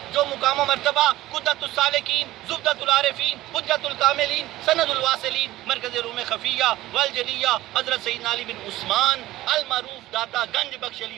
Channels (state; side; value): quieter; left; 16.3 dB